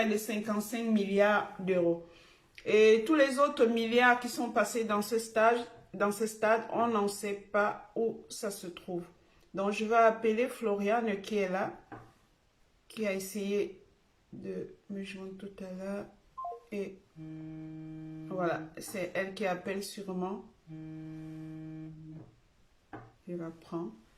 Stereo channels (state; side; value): identical; both; correlation 1.00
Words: de 55 milliards d'euros. Et tous les autres milliards qui sont passés dans ce stade, on n'en sait pas où ça se trouve. Donc, je vais appeler Floriane qui est là, qui a essayé de me joindre tout à l'heure. Et voilà, c'est elle qui appelle sûrement. Je la prends.